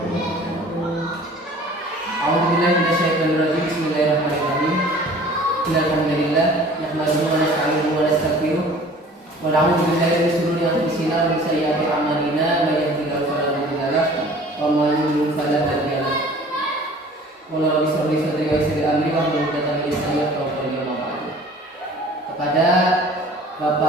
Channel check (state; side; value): normal; both; correlation 0.48